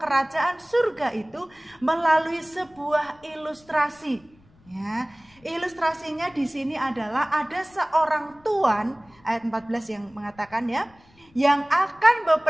surga itu melalui sebuah ilustrasi. Ya, ilustrasinya di sini adalah ada seorang tuan, ayat 14 yang mengatakan ya, yang akan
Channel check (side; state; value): left; noise; rumble, 29 dB below the sound